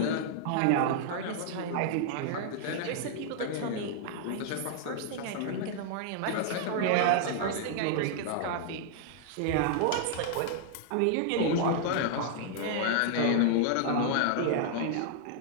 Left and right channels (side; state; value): both; different; correlation -0.01